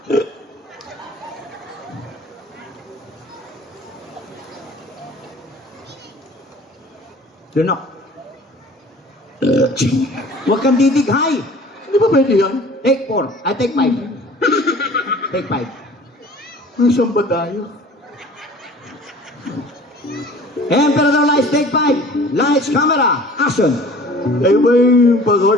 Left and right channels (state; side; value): normal; both; correlation 0.47